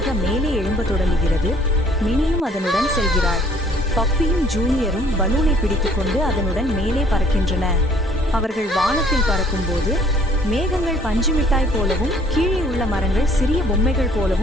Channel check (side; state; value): both; normal; correlation 0.59